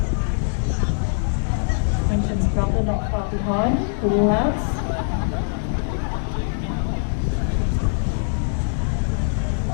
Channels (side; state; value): right; silent; 64 dB below the other